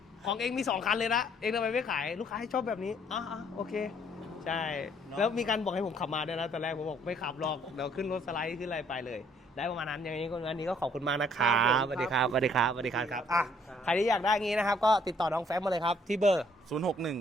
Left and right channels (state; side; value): normal; both; correlation 0.64